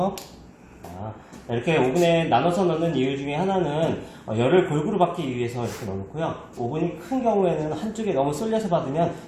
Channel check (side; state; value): both; identical; correlation 1.00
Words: 이렇게 오븐에 나눠서 넣는 이유 중에 하나는 열을 골고루 받기 위해서 이렇게 넣어놓고요. 오븐이 큰 경우에는 한쪽에 너무 쏠려서 받으면